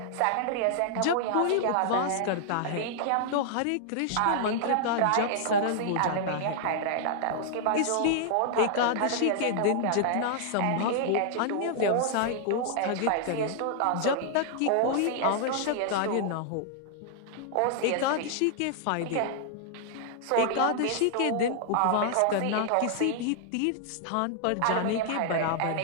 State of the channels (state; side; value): different; both; correlation -0.01